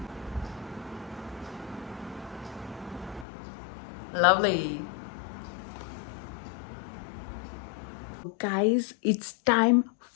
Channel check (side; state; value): right; drops out; at 3.2 s